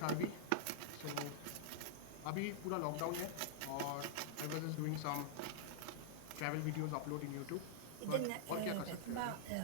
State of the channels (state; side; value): different; both; correlation -0.01